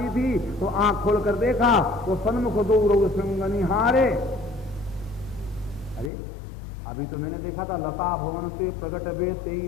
थी। तो आंख खोल कर देखा तो सन्मुख दो रोग सिंगनी हारे। अरे अभी तो मैंने देखा था लता भवन से प्रगट बे ते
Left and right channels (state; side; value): drops out; right; at 6.1 s